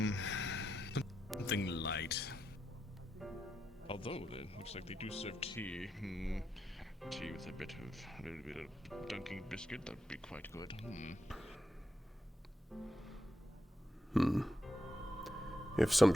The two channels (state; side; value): normal; both; correlation 0.85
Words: Something light. Although it looks like they do serve tea. Tea with a little bit of dunking biscuit, that'd be quite good. If some